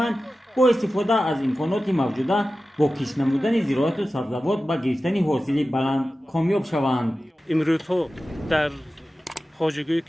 бо истифода аз имконоти мавҷуда бо кишт намудани зироату сабзавот ба гирифтани ҳосили баланд комёб шаванд. имрӯзҳо дар хоҷагӯи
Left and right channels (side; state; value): both; normal; correlation 0.95